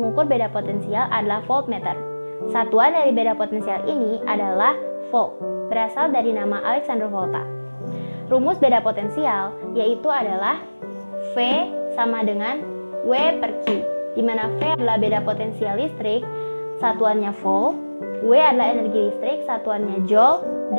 beda potensial adalah voltmeter. Satuan dari beda potensial ini adalah volt, berasal dari nama Alexander Volta. Rumus beda potensial yaitu adalah V sama dengan W per Q, di mana V adalah beda potensial listrik, satuannya volt, W adalah energi listrik, satuannya joule,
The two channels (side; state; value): both; inverted; correlation -1.00